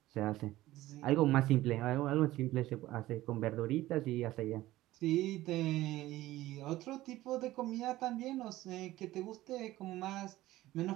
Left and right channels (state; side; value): quieter; left; 16.2 dB